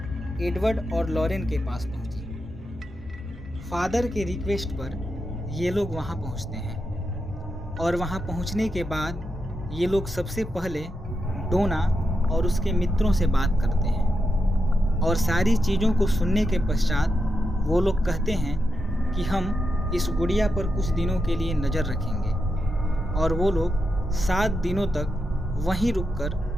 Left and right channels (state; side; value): normal; both; correlation 0.86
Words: एडवर्ड और लॉरेन के पास पहुंची। फादर के रिक्वेस्ट पर ये लोग वहां पहुंचते हैं और वहां पहुंचने के बाद ये लोग सबसे पहले डोना और उसके मित्रों से बात करते हैं और सारी चीज़ों को सुनने के पश्चात वो लोग कहते हैं कि हम इस गुड़िया पर कुछ दिनों के लिए नज़र रखेंगे और वो लोग 7 दिनों तक वहीं रुककर